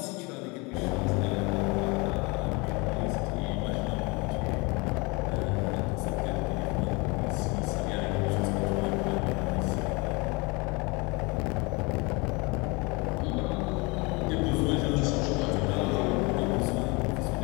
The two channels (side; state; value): right; quieter; 27.7 dB